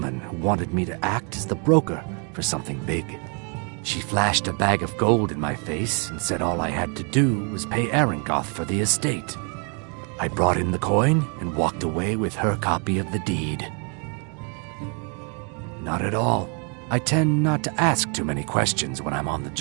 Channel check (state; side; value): quieter; left; 37.2 dB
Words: who wanted me to act as the broker for something big. She flashed a bag of gold in my face and said all I had to do was pay Arangoth for the estate. I brought in the coin and walked away with her copy of the deed. Not at all. I tend not to ask too many questions when I'm on the